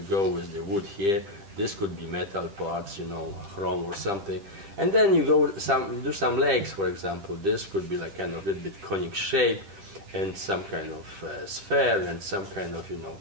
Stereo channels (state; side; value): late; left; 10 ms